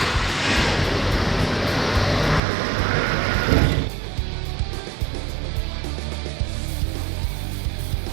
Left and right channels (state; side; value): drops out; left; at 2.4 s